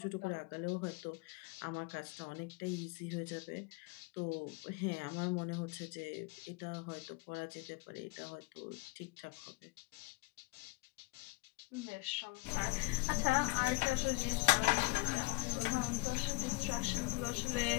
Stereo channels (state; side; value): quieter; right; 24.0 dB